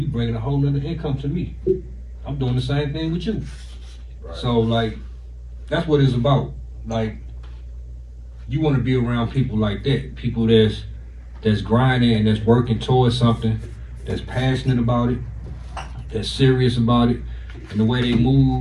bringing a whole nother income to me. I'm doing the same thing with you. Right. So like, that's what it's about. Like, you want to be around people like that, people that's grinding and that's working towards something, that's passionate about it, that's serious about it, and the way they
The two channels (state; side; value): identical; both; correlation 1.00